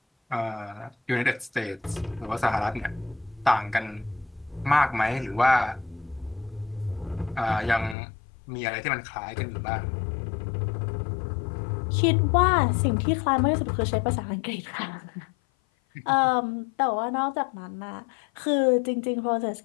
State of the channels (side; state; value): right; drops out; at 8.0 s